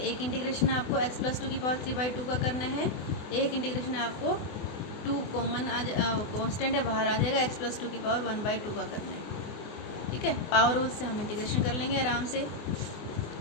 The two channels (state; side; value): late; right; 24 ms